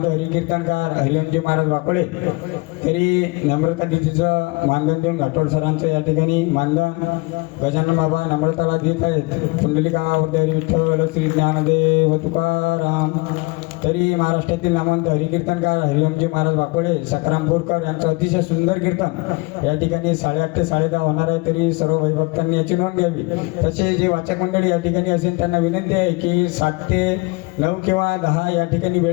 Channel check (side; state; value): right; quieter; 26.0 dB